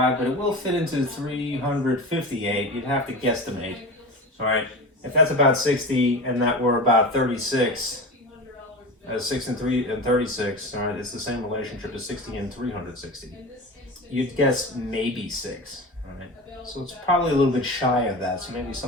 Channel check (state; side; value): normal; both; correlation 0.29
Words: but it will fit into 358. You'd have to guesstimate. All right. If that's about 60 and that were about 36, 6 and 3 and 36, all right, it's the same relationship as 60 and 360. You'd guess maybe 6, all right? So it's probably a little bit shy of that, so maybe